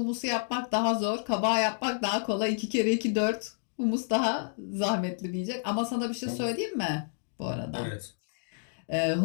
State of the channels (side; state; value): right; silent; digital silence